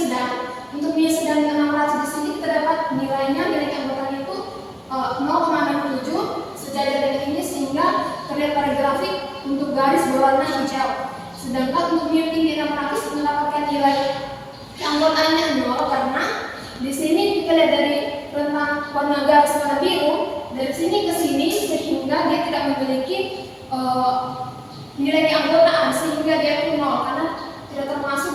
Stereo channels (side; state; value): both; identical; correlation 1.00